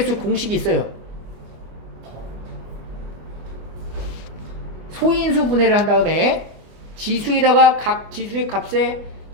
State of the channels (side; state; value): left; late; 24 ms